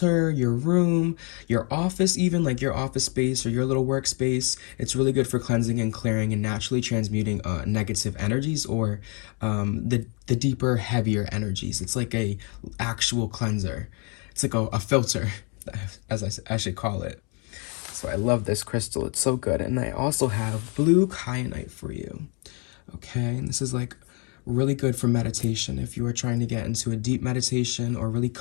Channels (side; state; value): right; quieter; 34.7 dB